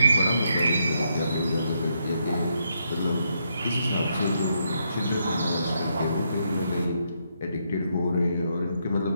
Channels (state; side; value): inverted; both; correlation -0.78